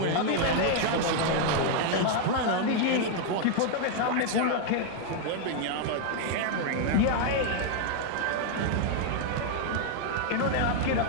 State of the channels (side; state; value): both; different; correlation 0.00